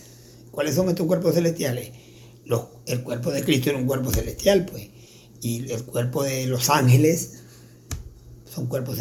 ¿Cuáles son estos cuerpos celestiales? El cuerpo de Cristo era un cuerpo celestial, pues. Y el cuerpo de los ángeles son cuerpos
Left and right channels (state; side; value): identical; both; correlation 1.00